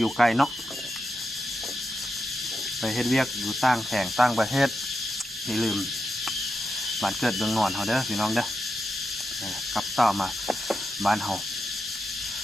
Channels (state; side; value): normal; both; correlation 0.87